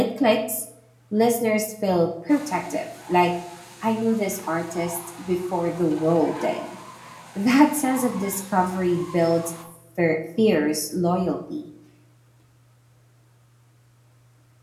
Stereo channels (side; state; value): both; identical; correlation 1.00